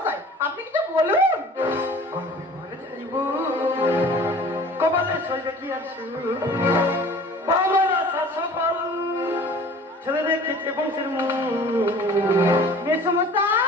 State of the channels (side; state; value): both; normal; correlation 0.46